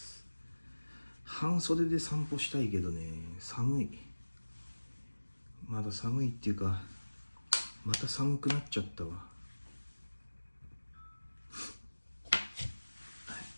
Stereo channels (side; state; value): both; inverted; correlation -1.00